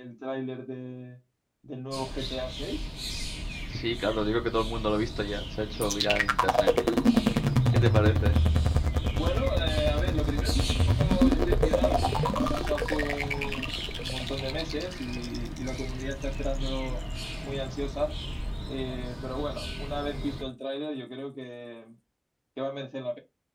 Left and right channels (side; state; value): both; identical; correlation 1.00